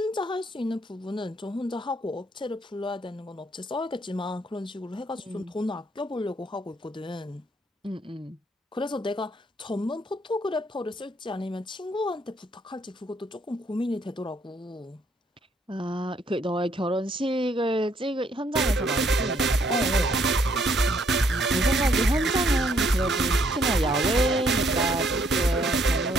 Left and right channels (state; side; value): normal; both; correlation 0.68